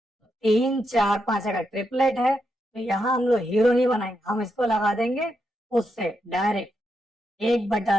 3 4 5 अगर ट्रिपलेट है, तो यहाँ हम लोग हीरो नहीं बनाएंगे, हम इसको लगा देंगे उससे डायरेक्ट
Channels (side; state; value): both; normal; correlation 0.83